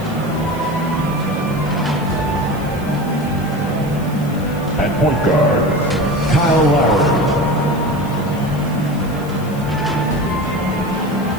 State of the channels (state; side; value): noise; left; hiss, 21 dB below the sound